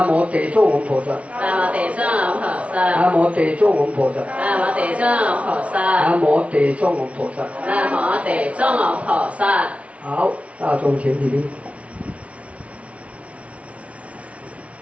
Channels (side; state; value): left; late; 0.064 ms